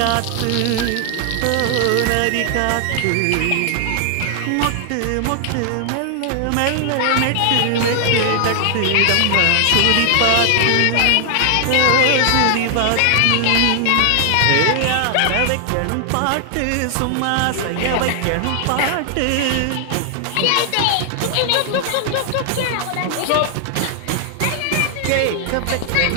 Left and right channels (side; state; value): both; different; correlation 0.00